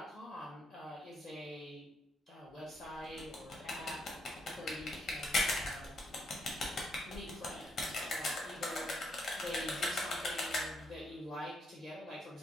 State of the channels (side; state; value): both; normal; correlation 0.75